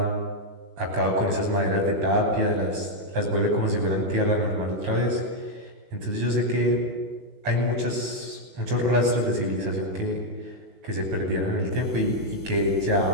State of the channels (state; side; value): late; left; 19 ms